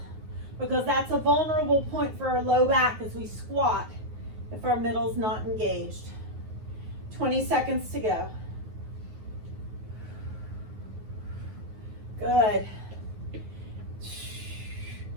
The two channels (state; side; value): late; left; 9.4 ms